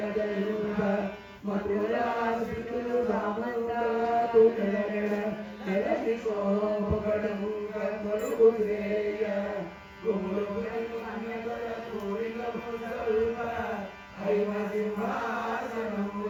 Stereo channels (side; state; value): both; identical; correlation 1.00